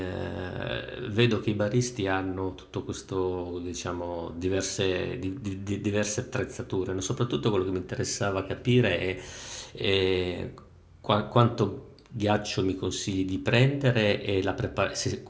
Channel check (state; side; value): identical; both; correlation 1.00